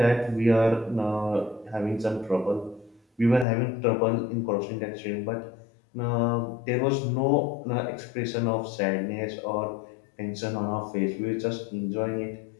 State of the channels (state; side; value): drops out; right; at 3.5 s